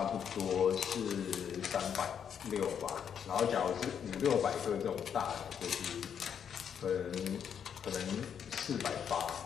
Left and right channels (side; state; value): right; quieter; 8.0 dB